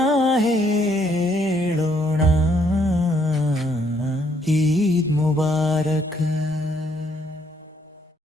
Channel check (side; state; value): both; normal; correlation 0.70